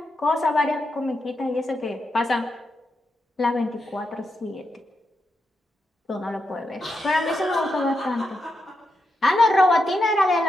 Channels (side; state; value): both; normal; correlation 0.85